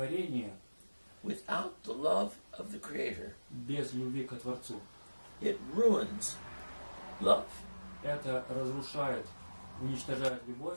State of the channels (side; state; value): both; inverted; correlation -1.00